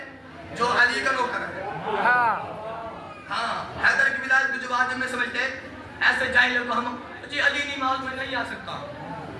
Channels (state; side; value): identical; both; correlation 1.00